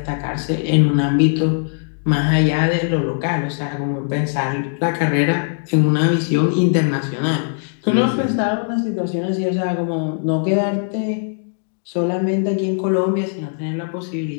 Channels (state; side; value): silent; right; digital silence